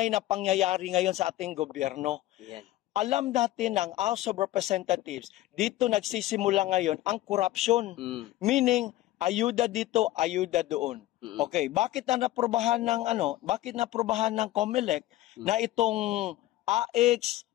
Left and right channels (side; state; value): right; quieter; 15.7 dB